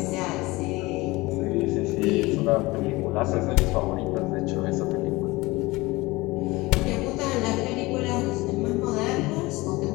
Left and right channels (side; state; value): right; quieter; 21.7 dB